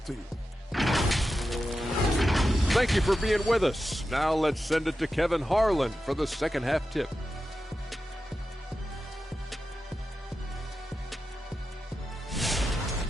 to you. Thank you for being with us. Now let's send it to Kevin Harlan for the second half tip.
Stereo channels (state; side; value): normal; both; correlation 0.91